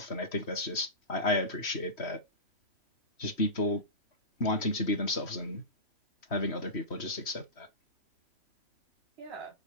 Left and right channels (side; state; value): right; late; 3.1 ms